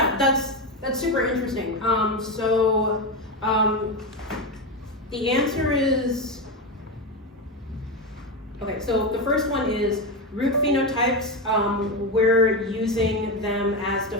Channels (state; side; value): normal; both; correlation 0.15